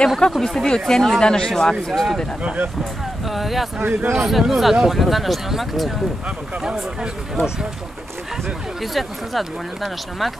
kako biste vi ocijenili današnju akciju studenata? Ja sam izuzetno zadovoljna današnjom akcijom. Izuzetno sam zadovoljna današnjom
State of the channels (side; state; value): both; normal; correlation 0.88